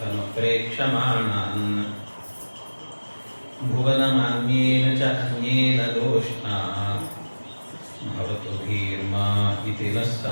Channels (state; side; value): inverted; both; correlation -1.00